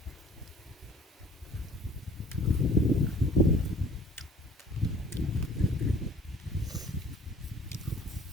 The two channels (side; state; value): both; normal; correlation 0.51